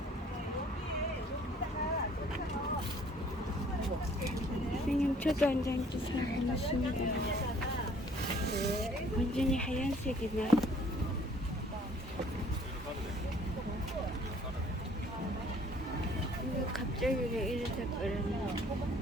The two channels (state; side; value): normal; both; correlation 0.57